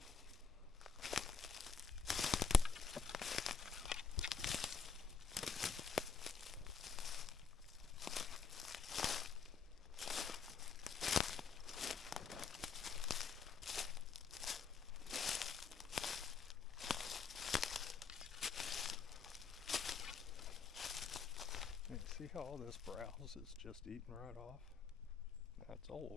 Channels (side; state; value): right; quieter; 5.3 dB